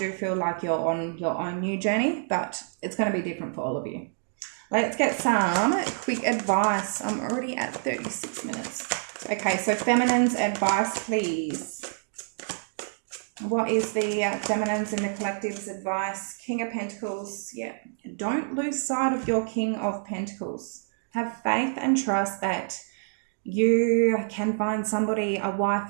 feel like you're on your own new journey, but it's going to be different for all of you. Let's get some quick advice. I'm already at 36 minutes. Okay, so feminine's advice, please. What is the feminine's in the collective's advice? King of Pentacles. Yeah. Don't lose sight of your King of Pentacles. Have faith and trust that you can find somebody, a wife,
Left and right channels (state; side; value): silent; left; digital silence